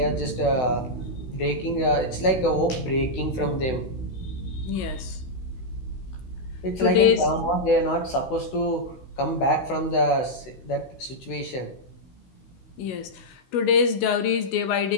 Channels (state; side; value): late; right; 16 ms